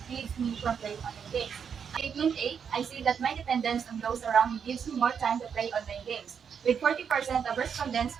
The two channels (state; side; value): quieter; left; 7.1 dB